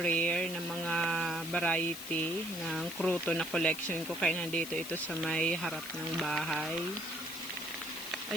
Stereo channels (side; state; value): left; noise; hiss, 10 dB below the sound